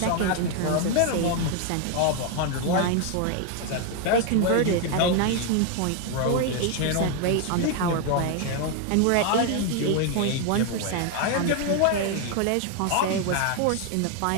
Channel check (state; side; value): different; both; correlation 0.01